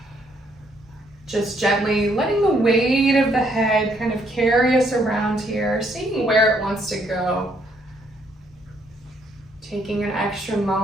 Just gently letting the weight of the head kind of carry us around here, seeing where it wants to go. Taking an extra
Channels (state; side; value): normal; both; correlation 0.70